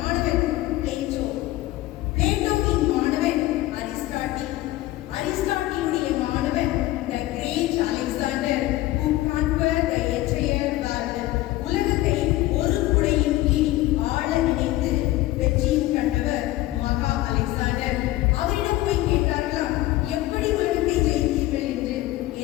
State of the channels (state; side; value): quieter; right; 16.7 dB